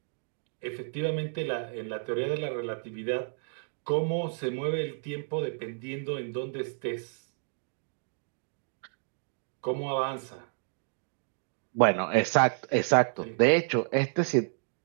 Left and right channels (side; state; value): left; silent; digital silence